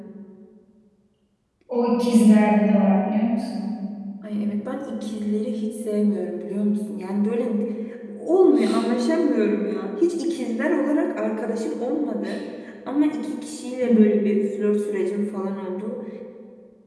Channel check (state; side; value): identical; both; correlation 1.00